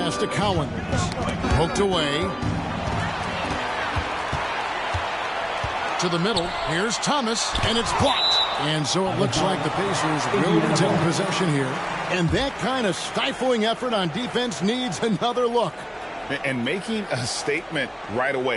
to Cowens. Poked away. To the middle. Here's Thomas, and it's blocked. And so it looks like the Pacers will retain possession here. And that kind of stifling effort on defense needs another look. And making a statement right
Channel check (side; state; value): both; identical; correlation 1.00